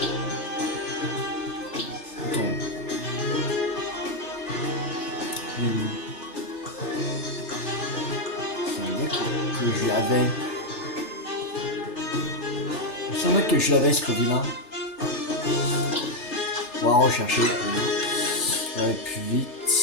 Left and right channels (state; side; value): late; right; 3.3 ms